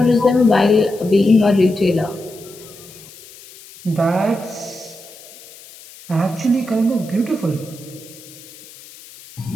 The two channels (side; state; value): left; noise; hiss, 20 dB below the sound